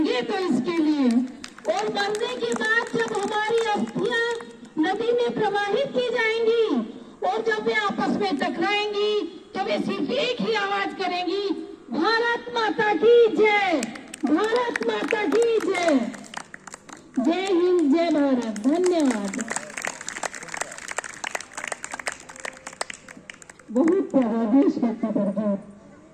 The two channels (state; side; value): identical; both; correlation 1.00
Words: तो इसके लिए। और मरने के बाद जब हमारी अस्थियां नदी में प्रवाहित की जाएंगी और जब वे आपस में टकराएंगी तो वे सिर्फ एक ही आवाज करेंगी, भारत माता की जय, भारत माता की जय। जय हिंद, जय भारत। धन्यवाद। बहुत प्यारा देशभक्ति पर गीत